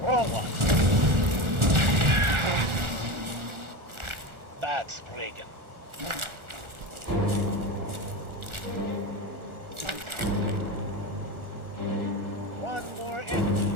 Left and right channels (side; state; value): left; late; 1.4 ms